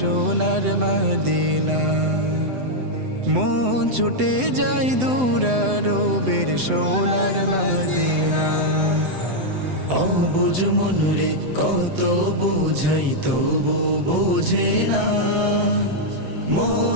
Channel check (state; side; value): late; left; 7.9 ms